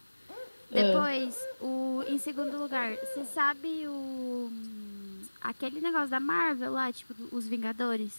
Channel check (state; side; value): inverted; both; correlation -1.00